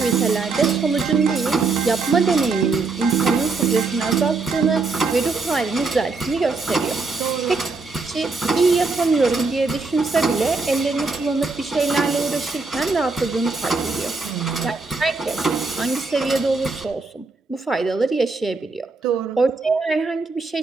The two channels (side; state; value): left; quieter; 4.0 dB